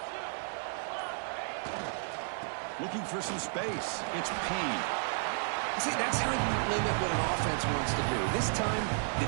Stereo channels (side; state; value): left; silent; 56 dB below the other